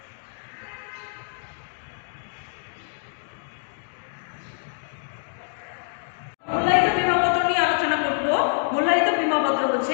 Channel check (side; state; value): right; silent; digital silence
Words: মূল্যায়িত বীমাপত্র নিয়ে আলোচনা করব। মূল্যায়িত বীমাপত্র